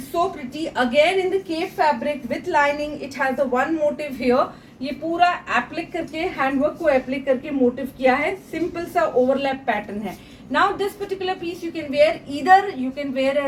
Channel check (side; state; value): both; identical; correlation 1.00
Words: so pretty again in the crepe fabric with lining. It has the one motif here. ये पूरा एप्लिक करके हैंडवर्क को एप्लिक करके मोटिव किया है. सिंपल सा ओवरलैप पैटर्न है. Now this particular piece you can wear either you can wear